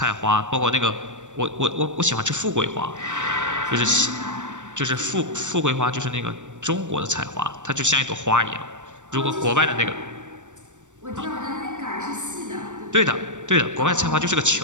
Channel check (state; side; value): late; left; 0.85 ms